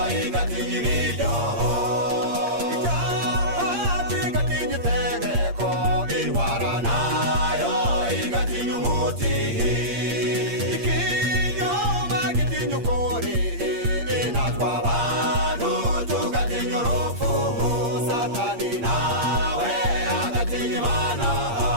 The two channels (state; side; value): late; left; 8.6 ms